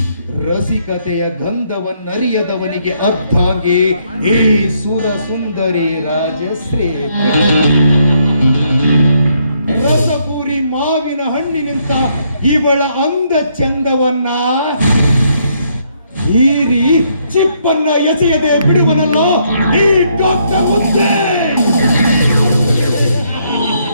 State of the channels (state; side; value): inverted; both; correlation -0.72